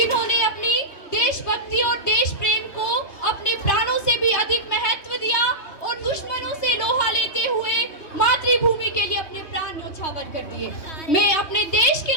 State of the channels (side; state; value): right; late; 3.2 ms